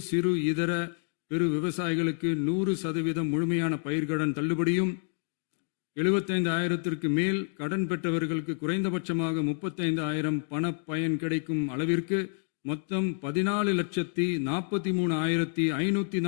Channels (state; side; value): silent; right; 59 dB below the other